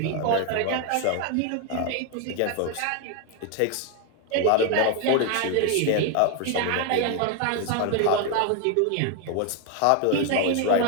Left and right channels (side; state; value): both; different; correlation 0.01